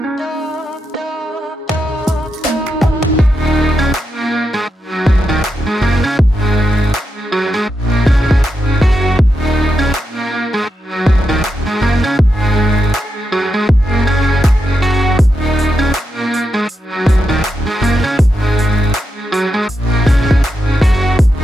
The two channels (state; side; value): normal; both; correlation 0.85